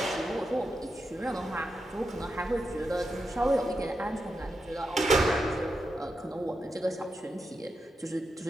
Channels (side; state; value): both; normal; correlation 0.87